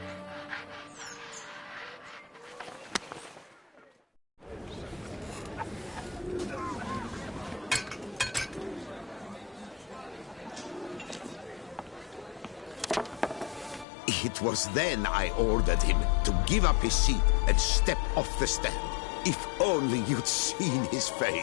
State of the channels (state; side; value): drops out; right; at 13.9 s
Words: It was then I ordered him to give up his seat and step off the stand. If only you'd seen his